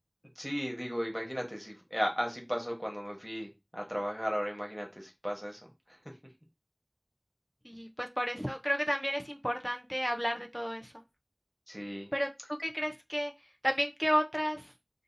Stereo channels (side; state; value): both; identical; correlation 1.00